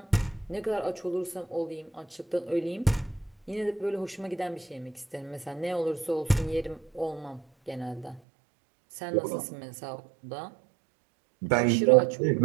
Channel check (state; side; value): drops out; left; at 8.2 s